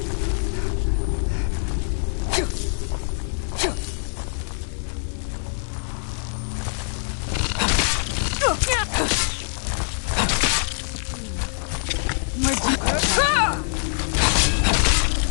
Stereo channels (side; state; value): right; silent; 63 dB below the other